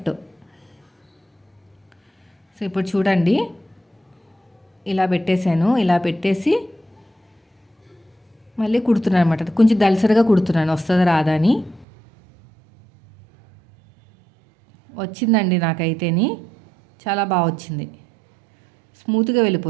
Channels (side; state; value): left; drops out; at 11.9 s